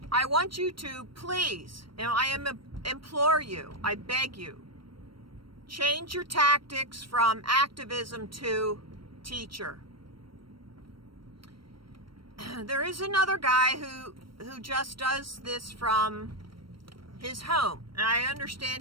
I want you to please, and I implore you, I beg you, change your tactics from activism to teacher. There is another guy who just does this from his home. And I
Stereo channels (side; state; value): left; late; 0.74 ms